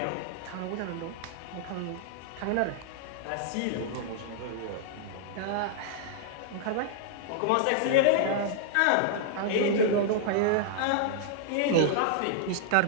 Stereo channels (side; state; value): both; different; correlation -0.01